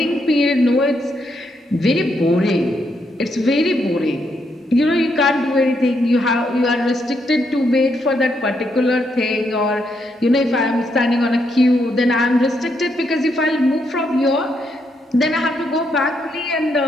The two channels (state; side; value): normal; both; correlation 0.78